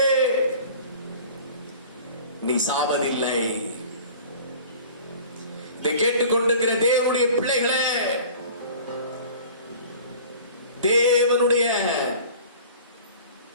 நீ சாவதில்லை. இதை கேட்டுக்கொண்டிருக்கிற தேவனுடைய பிள்ளைகளே, தேவனுடைய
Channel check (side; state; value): both; inverted; correlation -0.44